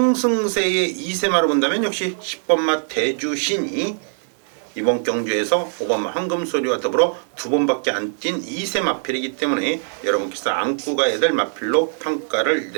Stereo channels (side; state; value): left; silent; 65 dB below the other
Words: 2세마로 본다면 역시 10번마 대주신이 이번 경주에서 5번마 황금소리와 더불어 2번밖에 안 뛴 2세 마필이기 때문에 여러분께서 안고 가야 될 마필로 평가를